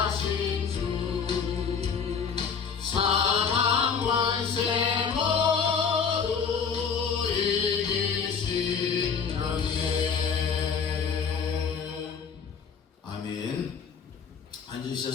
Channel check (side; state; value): right; quieter; 6.2 dB